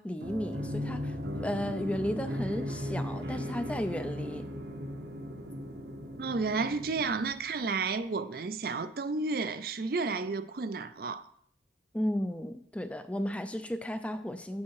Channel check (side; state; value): both; normal; correlation 0.63